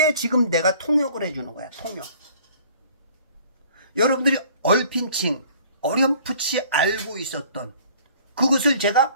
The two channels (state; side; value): inverted; both; correlation -0.53